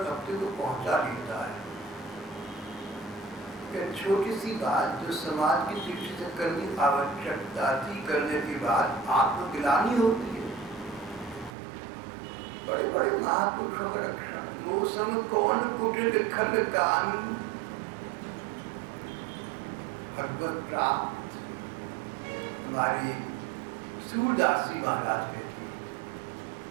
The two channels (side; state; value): left; drops out; at 11.6 s